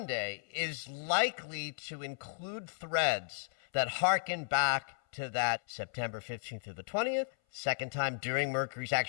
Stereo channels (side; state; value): right; silent; 55 dB below the other